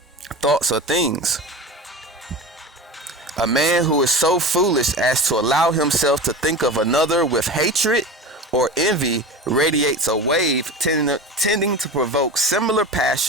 Thoughts are things. A man who is so foolish as to allow himself to think of another with hatred or envy radiates a wave tending to provoke similar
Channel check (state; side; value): normal; both; correlation 0.30